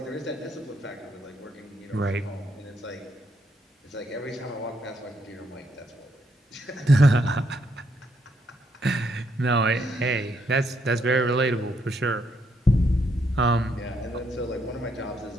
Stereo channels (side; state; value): both; normal; correlation 0.75